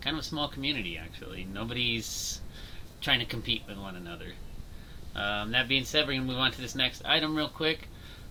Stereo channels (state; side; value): identical; both; correlation 1.00